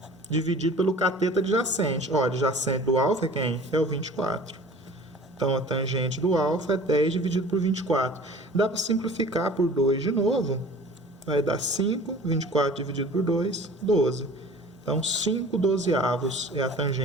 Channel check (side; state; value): both; normal; correlation 0.44